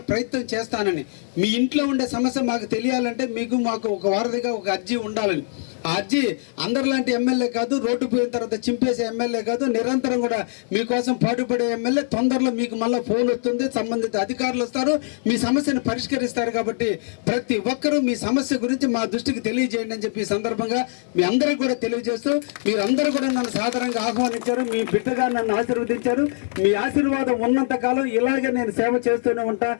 ప్రయత్నం చేస్తానని. మీ ఇంట్లో ఉండే సమస్య మాకు తెలియాలంటే మాకు ఒక వారధిగా ఒక అర్జీ ఉండాలని. ఆ అర్జీ అందరిలాంటి ఎమ్మెల్యే కాదు, రోడ్డు పోయిన తర్వాత చింపేసే ఎమ్మెల్యే కాదు, నిరంతరం కూడా మీకోసం పాటుపడే ఎమ్మెల్యే. తొందరలో మీకు మళ్ళీ ఫోన్ వస్తుంది, సంబంధిత అధికారులు వస్తారు, మీ సమస్యను పరిష్కరిస్తారు. కాబట్టి ప్రతి ఒక్కరూ మీ సమస్య గురించి మా దృష్టికి తెలియజేయండి అని చెప్పి ఈ సందర్భంగా మీ అందరికీ కూడా తెలియజేస్తూ, మీరందరూ కూడా నన్ను సాధారణంగా ఆహ్వానించారు, మీ బిడ్డగా నన్ను ఆశీర్వదించారు. మీ ఆశీర్వాదం ఉన్నంత కాలం ఇలాగే నేను సేవ చేస్తూనే ఉంటా,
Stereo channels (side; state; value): right; silent; digital silence